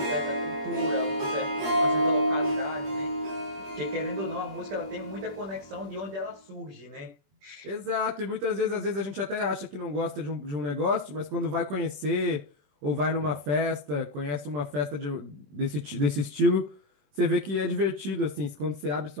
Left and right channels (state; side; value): late; left; 21 ms